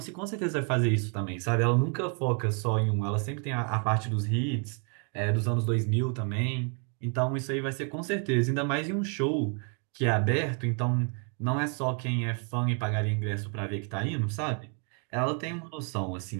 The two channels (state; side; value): quieter; left; 38.7 dB